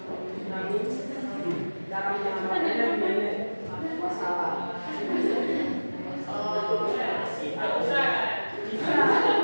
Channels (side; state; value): both; inverted; correlation -1.00